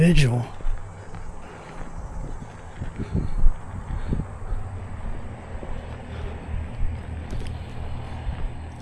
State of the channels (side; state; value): both; identical; correlation 1.00